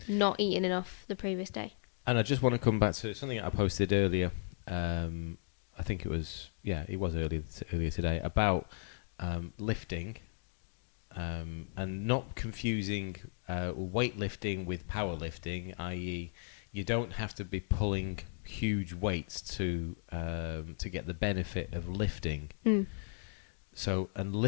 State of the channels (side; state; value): right; silent; 54 dB below the other